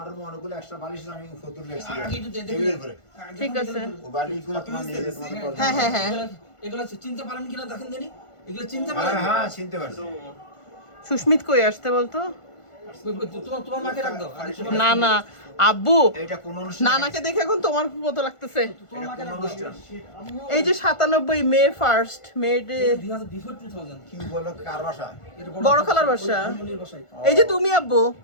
অনেকগুলো এক্সট্রা বালিশ আমি ফতুর লেখছি টেবিলের উপরে। ঠিক আছে ও বালিশগুলো তোমার নিজে তোমার করতে। হ্যাঁ হ্যাঁ হ্যাঁ এগুলো চিনতে পারেন কিনা দেখেন জানি। এগুলো চিনতে পারেন? হ্যাঁ চিনতে পারছি। সুস্মিত কই আসতে বলতো? তোমার মাকে ডাক দাও। না না আব্বু এটা কোন অনুষ্ঠান? নানাকে দেখে এখন তোমার মতো লাগতেছে। তোমার মাকে ডাক দাও। এই যে 97 মে 1 মে বিফোর 2000 কি বলো কার বাসা? এটা বড় খালার বাসা। মনির বাসায়। এই যে তুমি আব্বু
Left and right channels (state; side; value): late; right; 1.5 ms